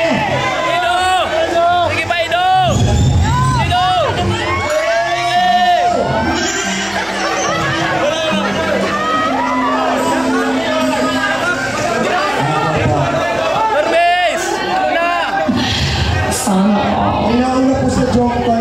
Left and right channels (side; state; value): right; noise; hum, 23 dB below the sound